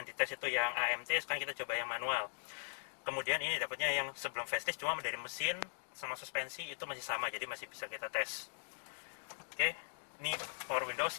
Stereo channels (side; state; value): right; silent; digital silence